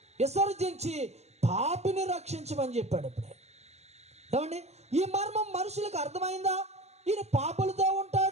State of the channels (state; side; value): late; left; 0.31 ms